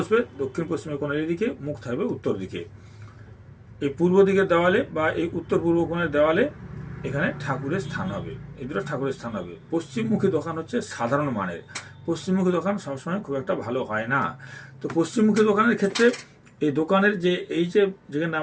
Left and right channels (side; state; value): both; identical; correlation 1.00